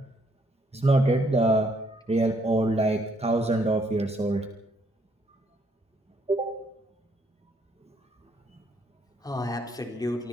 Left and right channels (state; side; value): normal; both; correlation 0.70